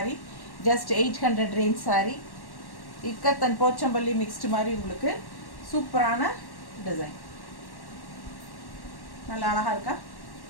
just 800 range sorry. Ikat and Pochampalli mixed மாதிரி உங்களுக்கு சூப்பரான டிசைன். நல்லா அழகாக இருக்கா?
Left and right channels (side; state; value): right; late; 1.1 ms